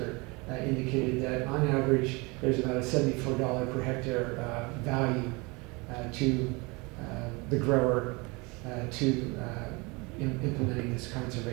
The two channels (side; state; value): left; quieter; 26.8 dB